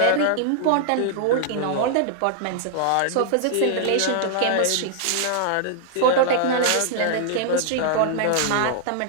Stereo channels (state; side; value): different; both; correlation -0.01